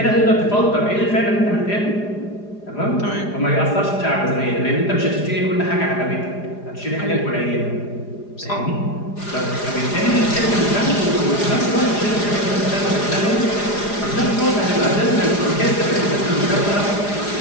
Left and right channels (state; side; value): late; right; 4.9 ms